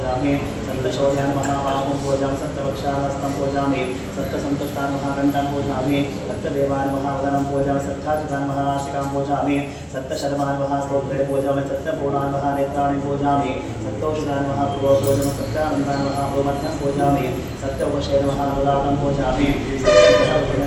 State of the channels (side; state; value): both; identical; correlation 1.00